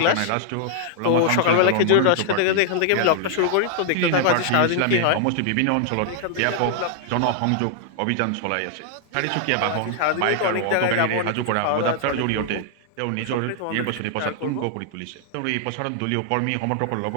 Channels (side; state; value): both; different; correlation 0.00